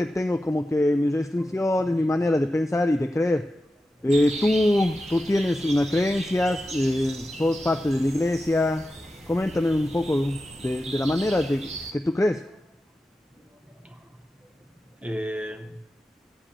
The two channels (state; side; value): normal; both; correlation 0.92